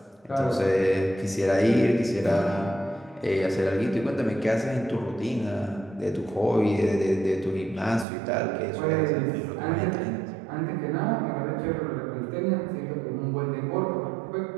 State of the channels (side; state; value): left; drops out; at 8.1 s